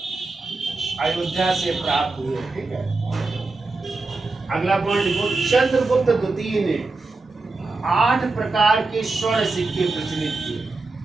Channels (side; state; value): left; quieter; 3.6 dB